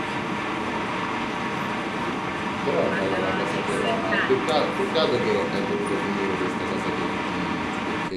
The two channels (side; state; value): both; identical; correlation 1.00